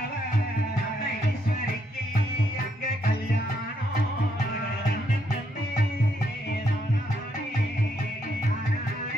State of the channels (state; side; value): normal; both; correlation 0.75